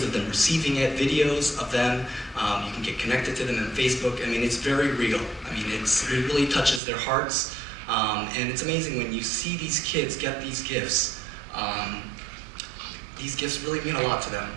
of them receiving it, videos of them. You can get connected to them on Facebook. I mean, it's very real. I mean, it really touches their hearts. And it's amazing when you see these kids get these gifts. These gifts really mean a lot to them.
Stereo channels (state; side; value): drops out; left; at 6.8 s